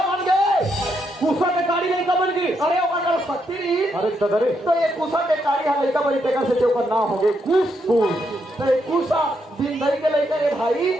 बन गए। कुसा के गाड़ी नहीं कमल की। अरे अगर शक्ति रही अरे दादा रे तो ये कुसा के काढ़ी हम लड़का बड़ी टेकर से चौकर ना हो गए कुस कुस तो ये कुसा दिन दही के लड़का ये भाई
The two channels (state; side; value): normal; both; correlation 0.79